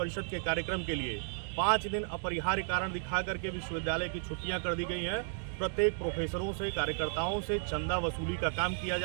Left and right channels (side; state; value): left; silent; digital silence